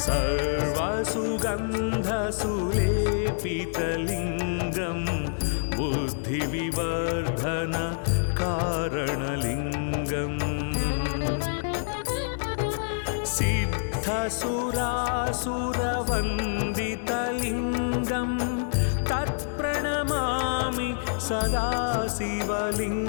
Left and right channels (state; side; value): silent; right; 60 dB below the other